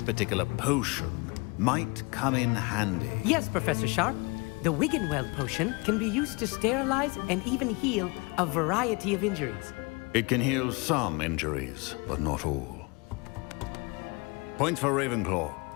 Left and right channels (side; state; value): right; quieter; 28.5 dB